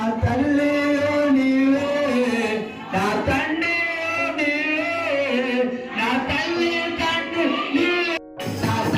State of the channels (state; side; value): identical; both; correlation 1.00